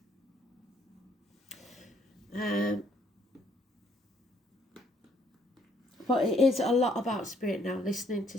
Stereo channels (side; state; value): both; normal; correlation 0.66